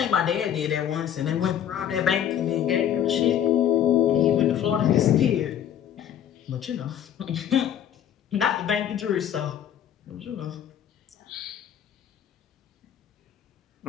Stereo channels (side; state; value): right; quieter; 9.9 dB